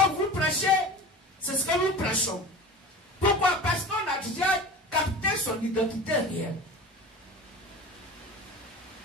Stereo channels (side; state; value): both; normal; correlation 0.34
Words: vous prêchez, c'est ce que nous prêchons. Pourquoi? Parce qu'on a déjà capté son identité réelle.